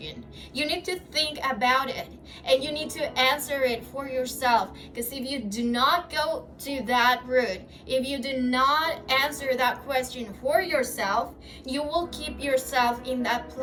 You need to think about it, and you need to answer it for yourself. Because if you do not go to that root, if you do not answer that question for yourself, you will keep yourself in that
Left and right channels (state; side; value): identical; both; correlation 1.00